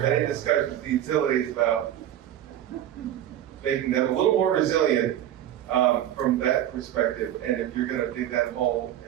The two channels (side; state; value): left; quieter; 11.6 dB